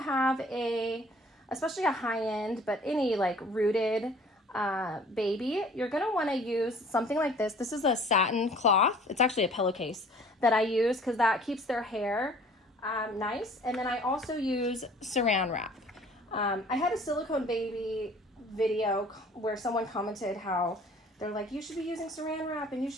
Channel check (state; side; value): normal; both; correlation 0.51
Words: especially a high-end, but any like rooted baby, you're going to want to use something like this. This is a satin cloth. It's actually a pillowcase that I use because that keeps their hair nice. And then I also use saran wrap. I had a silicone baby video where someone commented how they're like, you should be using saran wrap and you